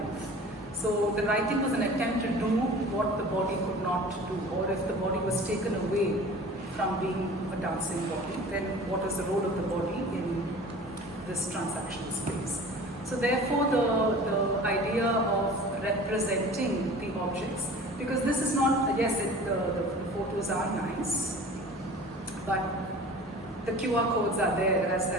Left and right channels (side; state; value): both; normal; correlation 0.41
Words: So the writing was an attempt to do what the body could not do, or if the body was taken away from being a dancing body, then what is the role of the body in this transactional space? So therefore the idea of representing the objects, because this is not, yes, the photos are nice, but the QR codes are there